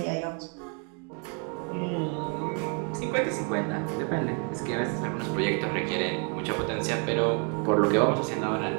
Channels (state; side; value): quieter; left; 37.8 dB